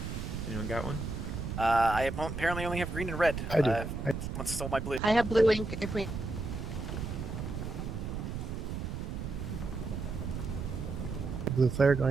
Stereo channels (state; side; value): noise; right; rumble, 5 dB below the sound